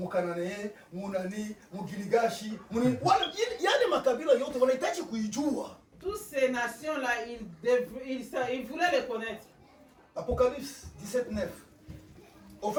Munani, Mugiligashi, yani makabila yote wanahitaji kuijua. Toutes ces nations là ils voulaient les connaître. Apocalypse 17:9. En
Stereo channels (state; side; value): identical; both; correlation 1.00